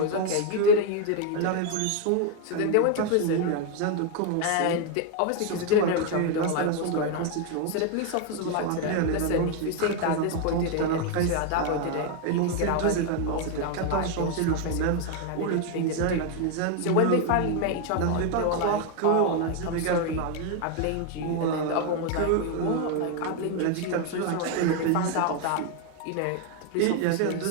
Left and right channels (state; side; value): different; both; correlation 0.01